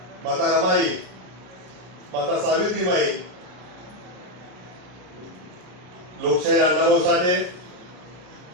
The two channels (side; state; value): left; late; 33 ms